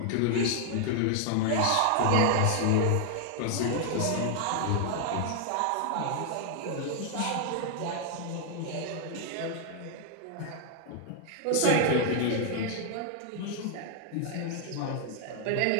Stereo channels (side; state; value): both; different; correlation 0.00